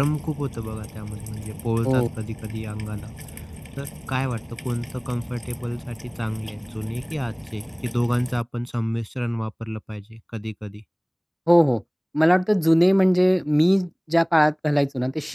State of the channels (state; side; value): identical; both; correlation 1.00